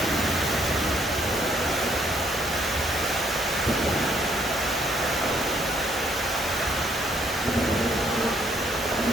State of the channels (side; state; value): both; normal; correlation 0.68